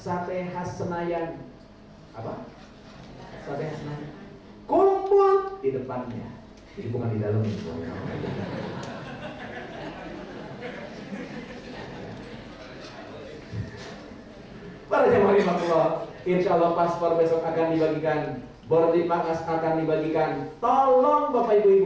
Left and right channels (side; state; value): both; identical; correlation 1.00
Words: Khas Senayan. Apa? Sate Khas Senayan. Kumpul di depannya. Jadi bukan di dalam itu. Para jemaah rahimahullah, insya Allah paspor besok akan dibagikan, boarding pass akan dibagikan. Tolong Bapak